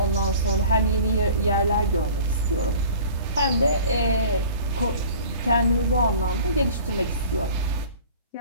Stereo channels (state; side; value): inverted; both; correlation -0.45